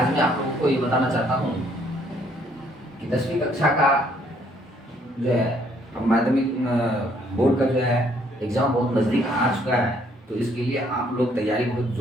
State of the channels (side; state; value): both; normal; correlation 0.66